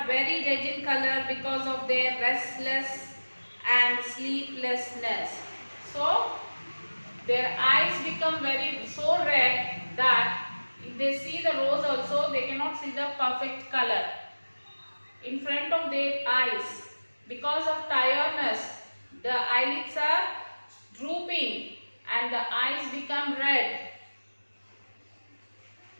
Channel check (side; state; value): both; inverted; correlation -1.00